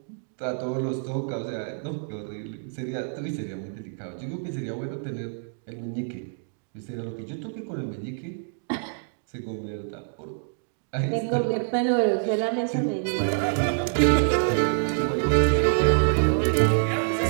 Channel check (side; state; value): left; silent; digital silence